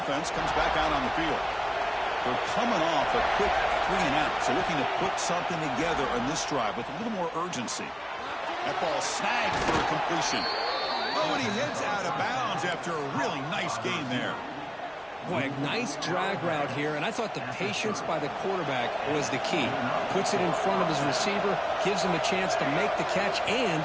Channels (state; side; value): identical; both; correlation 1.00